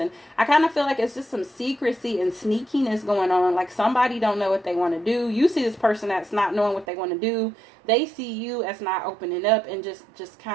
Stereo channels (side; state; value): left; drops out; at 6.9 s